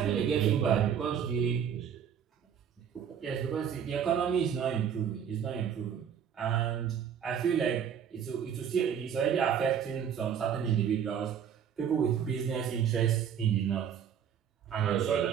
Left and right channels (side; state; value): left; quieter; 8.3 dB